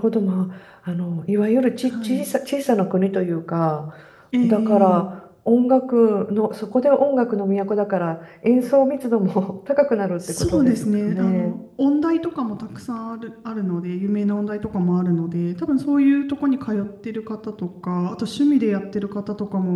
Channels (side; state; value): both; identical; correlation 1.00